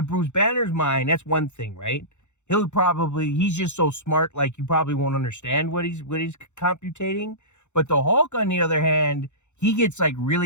Bruce Banner's mind, that's one thing, right? He's just so smart, like you probably won't understand what he's computating. But the Hulk, on the other hand, he gets like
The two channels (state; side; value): late; right; 0.83 ms